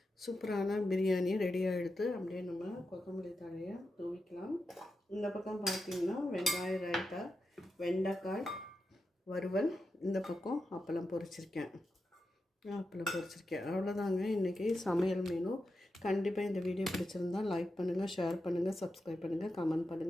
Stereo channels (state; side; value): normal; both; correlation 0.89